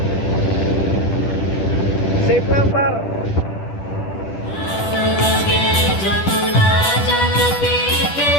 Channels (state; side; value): late; right; 10 ms